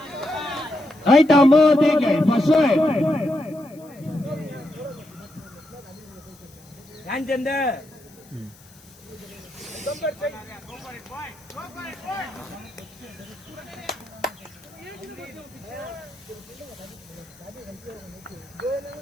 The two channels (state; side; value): noise; left; hiss, 25 dB below the sound